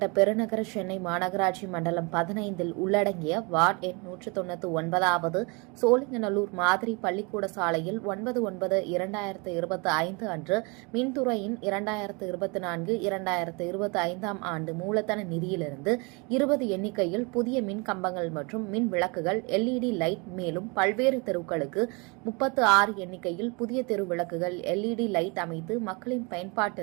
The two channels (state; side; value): quieter; left; 30.0 dB